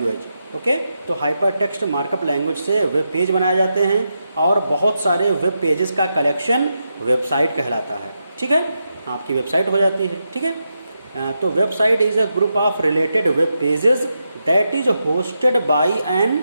Okay, तो हाइपर टेक्स्ट मार्कअप लैंग्वेज से वेब पेज बनाए जाते हैं और बहुत सारे वेब पेजेस का कलेक्शन वेबसाइट कहलाता है. ठीक है, आपकी वेबसाइट हो जाती है. ठीक है, तो website is a group of related web pages that is hosted by an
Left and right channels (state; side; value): inverted; both; correlation -0.85